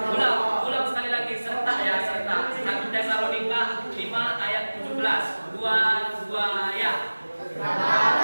Ulang sekali lagi, serentak ya, serentak. 1 Tesalonika 5 ayat 17. Dua ya.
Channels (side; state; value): both; inverted; correlation -1.00